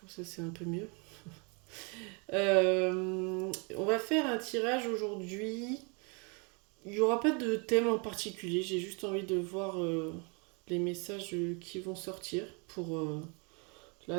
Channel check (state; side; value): quieter; left; 33.4 dB